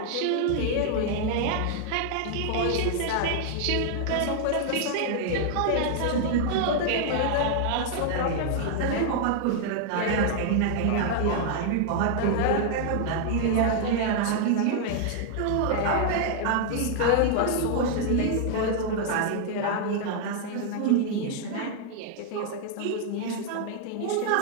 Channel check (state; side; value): different; both; correlation 0.00